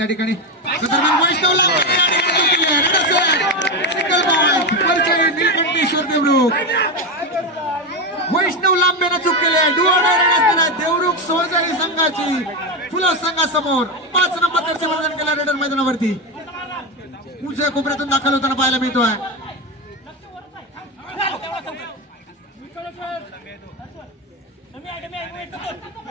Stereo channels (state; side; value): normal; both; correlation 0.13